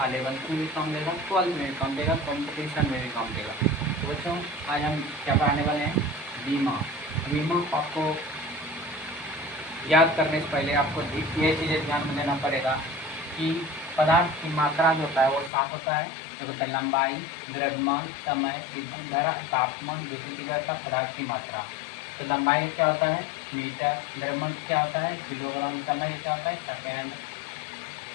11th में भी काम देगा, 12th में भी काम देगा, कंपटीशन में भी काम देगा। तो बच्चों, आज हम क्या पढ़ाने वाले हैं? बीमा। बीमा आपको याद करने से पहले आपको ये चीज़ें ध्यान में देना पड़ेगा कि पदार्थ की मात्रा जो होता है वो 7 होता है। जो होता है लंबाई, द्रव्यमान, समय, ईंधन धारा, तापमान, विद्युत तीव्रता, पदार्थ की मात्रा। तो लंबाई क्या होता है? मीटर। द्रव्यमान क्या होता है? किलोग्राम। समय क्या होता है? सेकेंड।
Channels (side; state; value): right; drops out; at 15.5 s